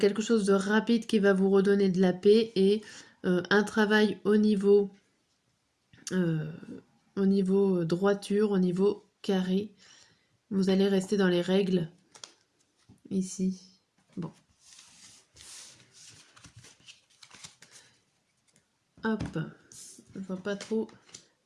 chose de rapide qui va vous redonner de la paix et un travail au niveau droiture, au niveau carré. Vous allez rester dans les règles ici. Bon. Hop. Je vois pas trop.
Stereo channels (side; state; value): both; identical; correlation 1.00